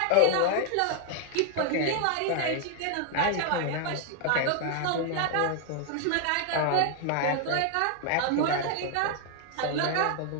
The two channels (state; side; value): different; both; correlation 0.00